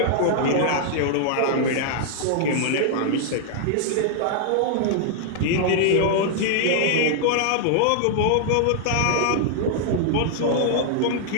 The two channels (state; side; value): different; both; correlation -0.01